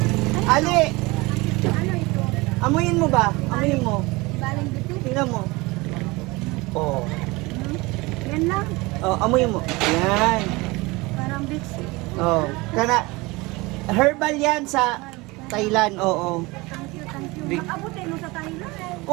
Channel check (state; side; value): quieter; left; 23.3 dB